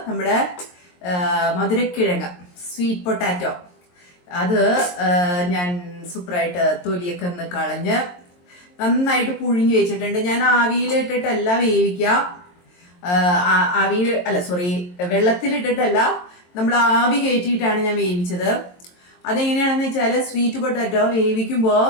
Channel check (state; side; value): late; right; 22 ms